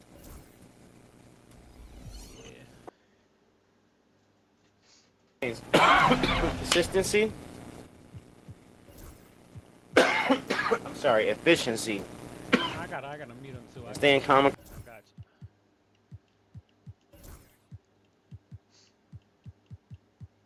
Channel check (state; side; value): identical; both; correlation 1.00